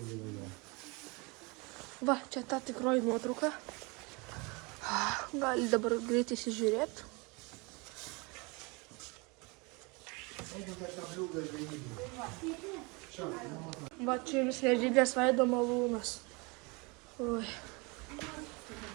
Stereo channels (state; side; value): quieter; left; 28.2 dB